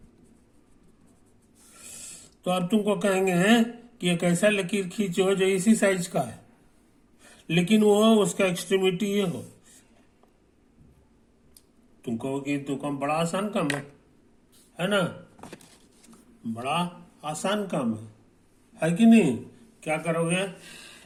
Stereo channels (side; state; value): both; identical; correlation 1.00